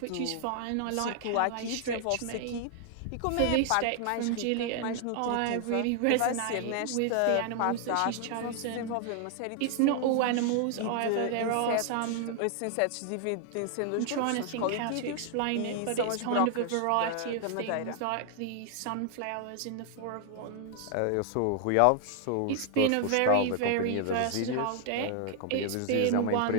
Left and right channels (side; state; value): both; different; correlation 0.00